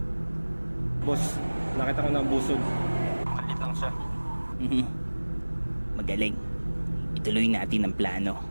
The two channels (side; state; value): both; inverted; correlation -1.00